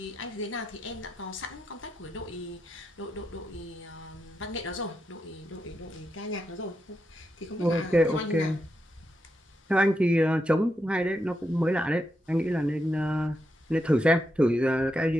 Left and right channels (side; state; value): both; normal; correlation 0.84